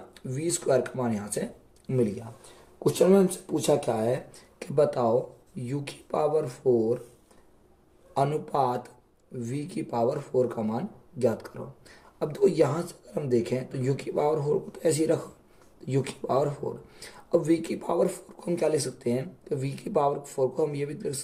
V² का मान यहाँ से मिल गया। क्वेश्चन में हमसे पूछा क्या है कि बताओ u की पावर 4 अनुपात v की पावर 4 का मान ज्ञात करो। अब देखो यहाँ से अगर हम देखें तो u की पावर 4 को तो ऐसे ही रखो, u की पावर 4। अब v की पावर 4 को हम क्या लिख सकते हैं, तो v की पावर 4 को हम ये भी लिख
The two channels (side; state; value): both; identical; correlation 1.00